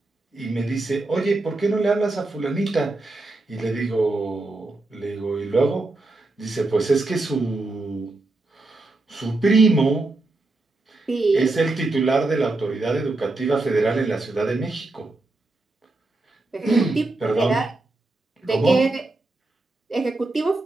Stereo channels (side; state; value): left; quieter; 3.1 dB